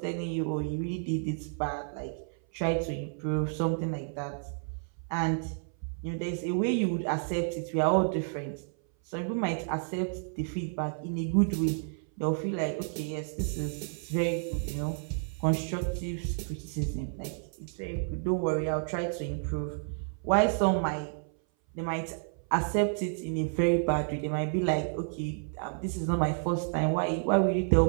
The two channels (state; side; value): silent; left; 57 dB below the other